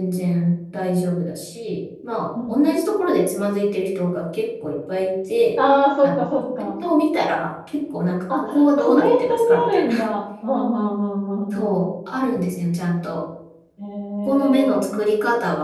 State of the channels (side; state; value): both; identical; correlation 1.00